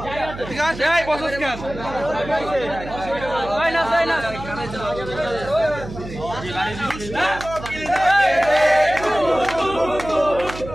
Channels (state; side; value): noise; right; hum, 12 dB below the sound